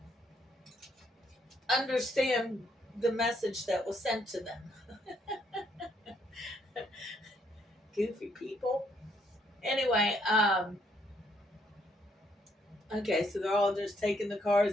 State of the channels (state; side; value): normal; both; correlation 0.71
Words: understand the message that was sent to them. Goofy people. Anyway, okay, so they're all just taking the